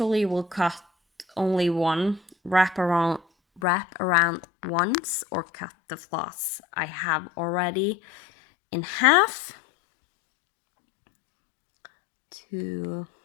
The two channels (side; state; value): right; drops out; at 3.6 s